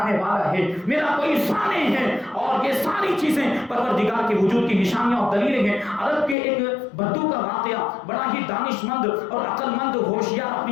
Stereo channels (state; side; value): drops out; right; at 6.4 s